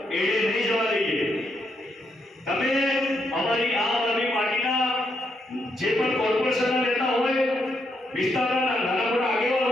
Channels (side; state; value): both; normal; correlation 0.78